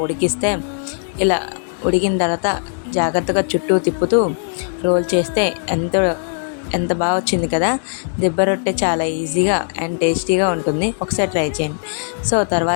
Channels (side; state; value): right; silent; digital silence